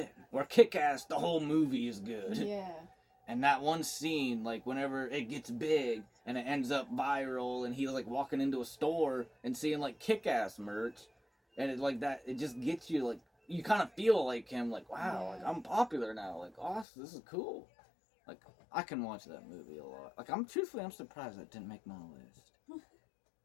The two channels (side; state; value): right; drops out; at 16.9 s